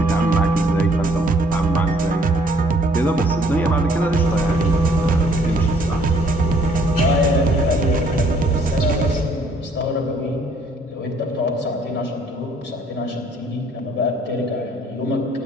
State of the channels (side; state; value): both; normal; correlation 0.62